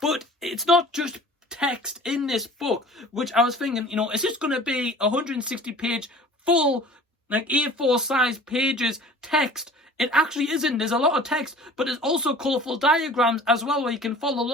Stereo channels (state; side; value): normal; both; correlation 0.45